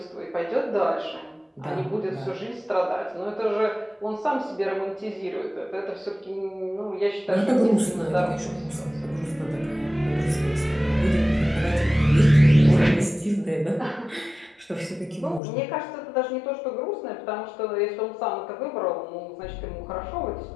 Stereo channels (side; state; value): right; drops out; at 15.4 s